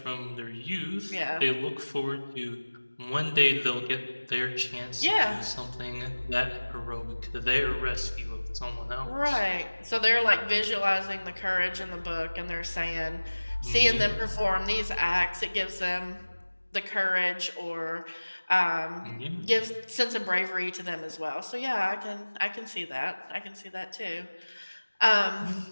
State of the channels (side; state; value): both; inverted; correlation -1.00